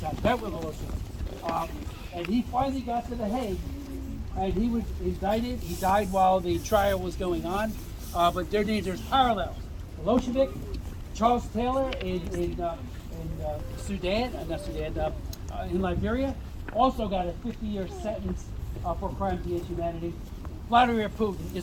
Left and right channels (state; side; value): identical; both; correlation 1.00